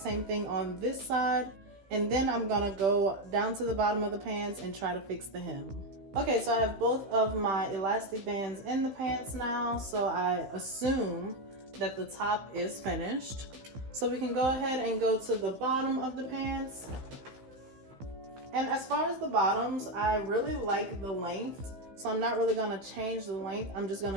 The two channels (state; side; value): late; left; 15 ms